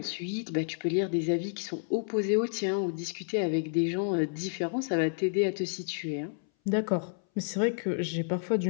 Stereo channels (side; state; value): right; silent; 58 dB below the other